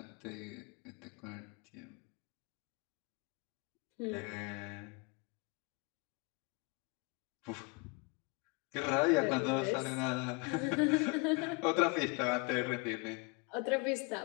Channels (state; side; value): quieter; right; 30.4 dB